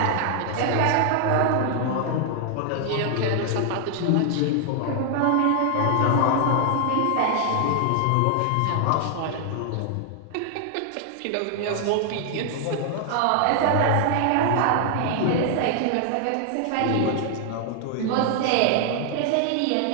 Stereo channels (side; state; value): both; different; correlation 0.00